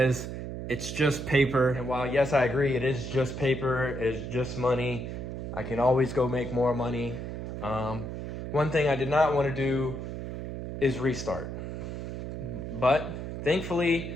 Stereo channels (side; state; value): right; noise; hum, 6 dB below the sound